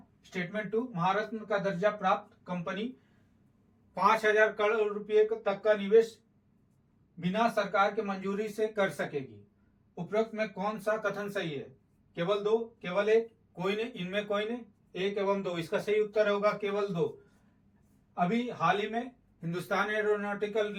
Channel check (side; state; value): both; identical; correlation 1.00